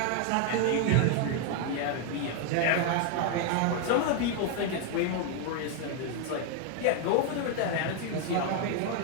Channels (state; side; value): different; both; correlation 0.00